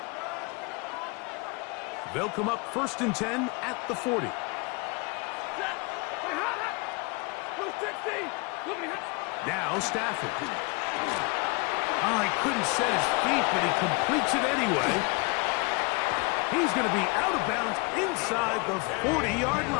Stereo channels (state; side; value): quieter; right; 29.0 dB